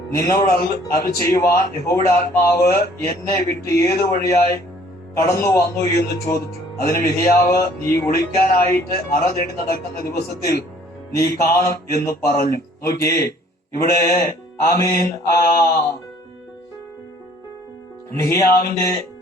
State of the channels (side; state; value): both; normal; correlation 0.57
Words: നിന്നോട് അരുളി ചെയ്യുവാൻ യഹോവയുടെ ആത്മാവ് എന്നെ വിട്ട് ഏതു വഴിയായി കടന്നു വന്നു എന്ന് ചോദിച്ചു. അതിന് മിഖ്യാവ്, നീ ഒളിക്കാനായിട്ട് അറ തേടി നടക്കുന്ന ദിവസത്തിൽ നീ കാണും എന്ന് പറഞ്ഞു. നോക്കിയേ, ഇവിടെ മിഖ്യാവിന്റെ